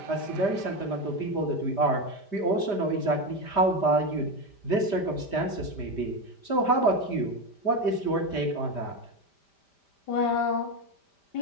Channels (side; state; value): right; late; 5.1 ms